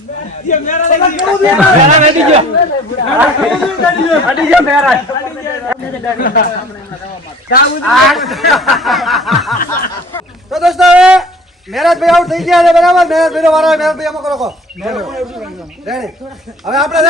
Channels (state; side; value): normal; both; correlation 0.48